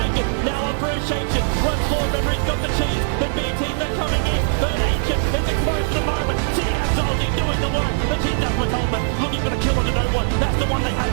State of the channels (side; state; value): left; silent; 65 dB below the other